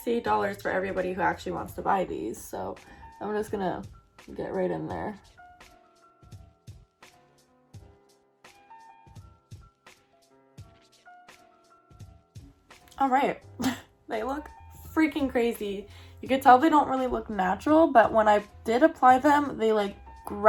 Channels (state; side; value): identical; both; correlation 1.00